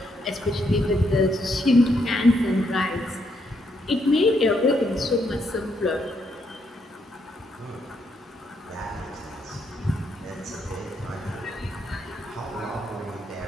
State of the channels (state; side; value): normal; both; correlation 0.76